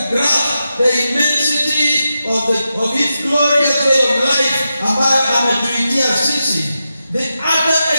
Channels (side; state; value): both; inverted; correlation -0.89